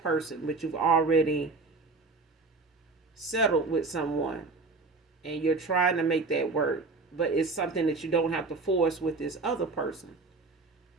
but you've already settled with someone and you're trying to make that work, but it's something that you don't have to force with this other person.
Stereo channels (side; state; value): left; quieter; 3.9 dB